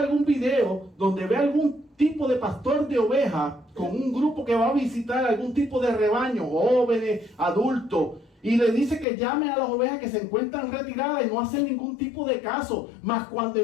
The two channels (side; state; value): right; drops out; at 9.1 s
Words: video donde ve algún tipo de pastor de oveja con un grupo que va a visitar algún tipo de rebaño, jóvenes, adultos, y le dice que llame a las ovejas que se encuentran retiradas y no hacen ningún tipo de caso. Mas cuando